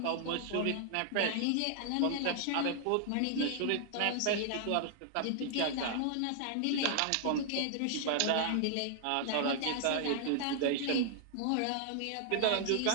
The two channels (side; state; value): both; different; correlation -0.01